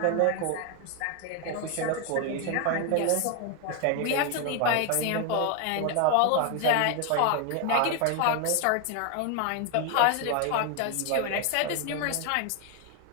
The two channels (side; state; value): both; different; correlation 0.01